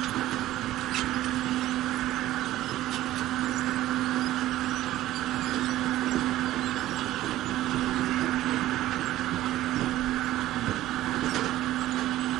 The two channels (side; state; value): left; quieter; 14.9 dB